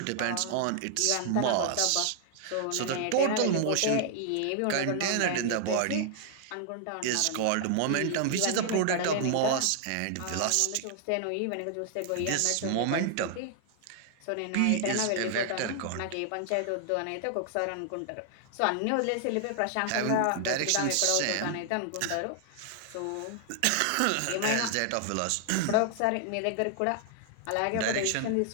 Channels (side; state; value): both; different; correlation 0.00